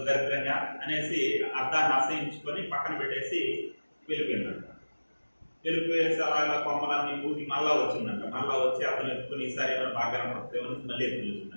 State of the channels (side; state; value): both; inverted; correlation -1.00